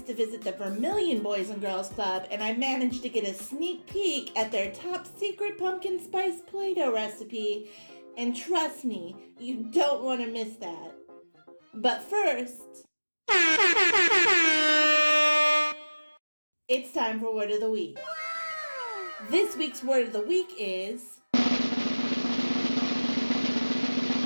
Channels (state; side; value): inverted; both; correlation -1.00